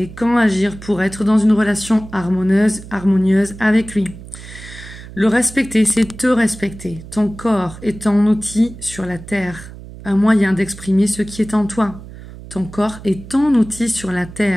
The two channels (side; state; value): right; noise; hum, 15 dB below the sound